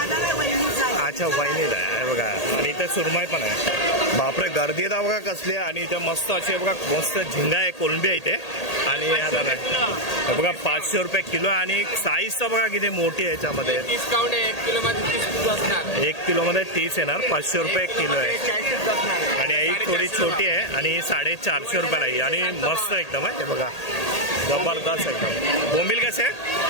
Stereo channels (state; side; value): late; right; 1.8 ms